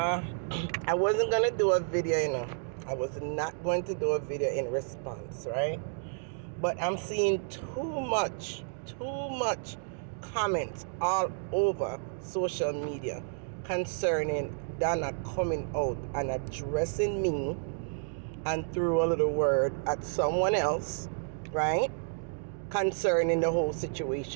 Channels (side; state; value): left; silent; digital silence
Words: wasn't going to do a video, I was not going to do a video in response, right? But I'm seeing too much comments all over social media concerning Donna coming out and addressing me and threw a little word at someone else, right? Concerning the whole